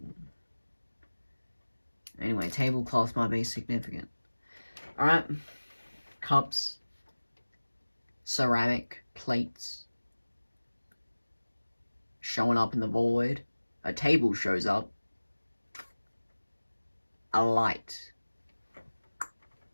Anyway, tablecloths might be significant. Alright. Cups. Ceramic plates. Showing up in the void. A table shows up. A light.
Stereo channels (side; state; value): both; inverted; correlation -1.00